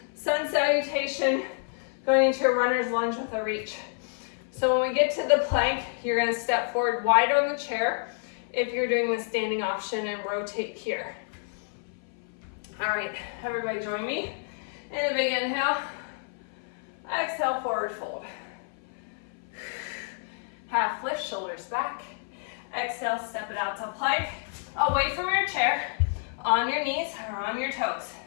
sun salutation, going into a runner's lunge with a reach. So when we get to the plank, you're gonna step forward wide on the chair if you're doing the standing option and rotate here. All right, everybody join me in a big inhale. Exhale, forward fold. Half lift, shoulders back. Exhale, step it out to plank. Away from your chair, on your knees or on your toes.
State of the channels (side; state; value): right; silent; 56 dB below the other